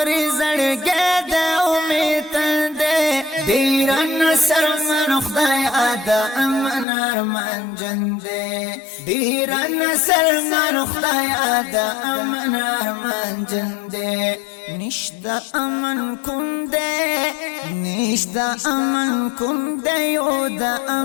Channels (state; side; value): drops out; right; at 6.9 s